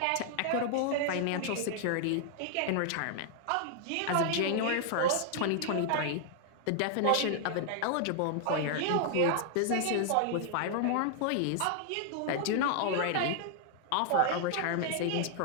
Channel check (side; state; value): both; different; correlation 0.00